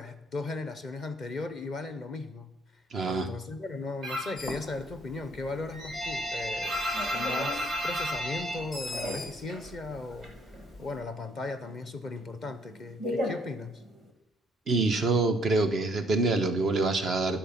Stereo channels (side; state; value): both; normal; correlation 0.65